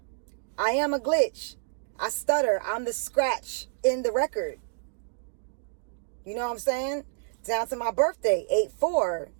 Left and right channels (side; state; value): left; silent; digital silence